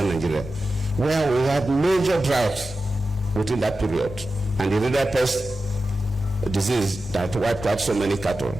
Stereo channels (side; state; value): both; normal; correlation 0.93